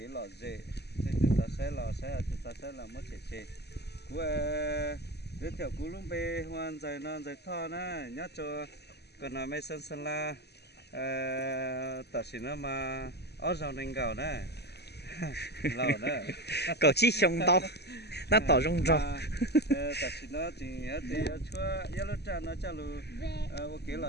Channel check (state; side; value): late; right; 0.48 ms